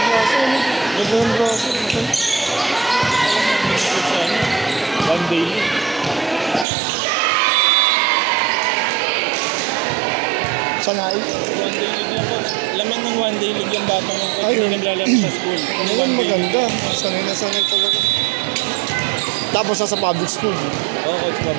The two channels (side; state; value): left; drops out; at 6.7 s